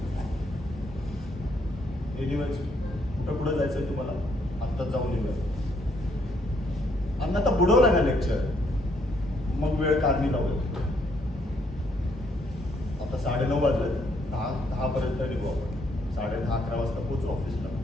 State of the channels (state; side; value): normal; both; correlation 0.71